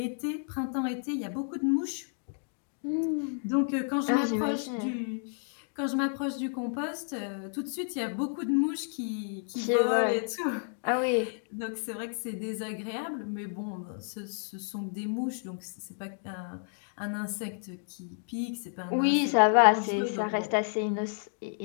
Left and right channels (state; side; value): silent; right; 57 dB below the other